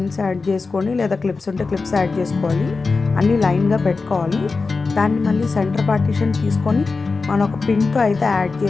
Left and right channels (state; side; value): quieter; right; 4.2 dB